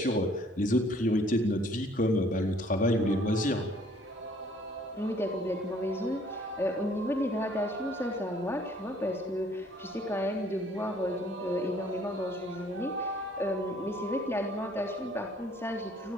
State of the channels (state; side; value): normal; both; correlation 0.59